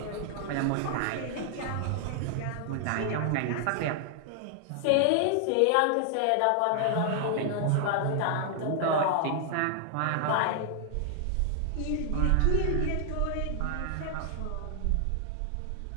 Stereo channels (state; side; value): different; both; correlation 0.00